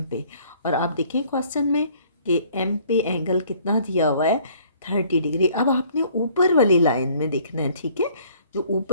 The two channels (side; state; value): both; inverted; correlation -0.57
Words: पे। और आप देखें क्वेश्चन में कि एम पे एंगल कितना दिया हुआ है 30 डिग्री। अब आपने ऊपर वाली लाइन में देखना है। ठीक है, जो